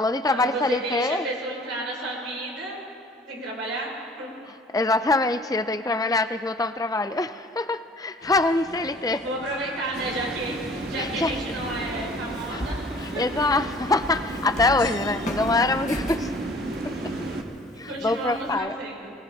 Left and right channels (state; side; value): normal; both; correlation 0.51